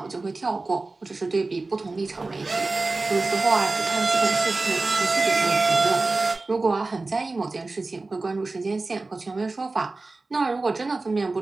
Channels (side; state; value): left; quieter; 3.4 dB